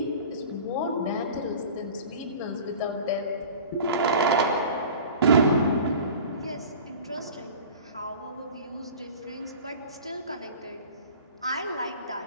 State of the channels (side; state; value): both; inverted; correlation -0.40